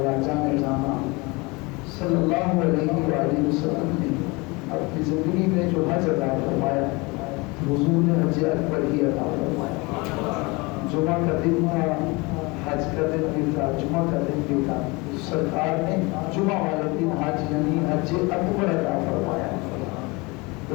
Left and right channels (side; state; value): right; quieter; 25.8 dB